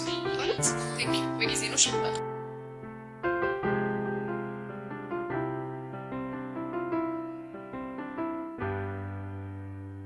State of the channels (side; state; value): both; identical; correlation 1.00